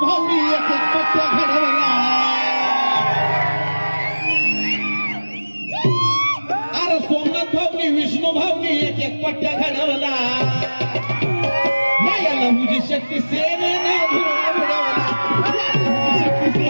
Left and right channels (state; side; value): inverted; both; correlation -1.00